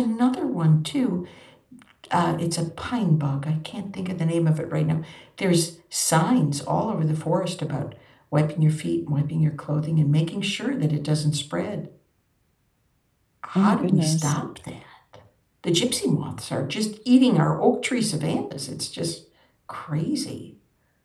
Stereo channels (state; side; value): identical; both; correlation 1.00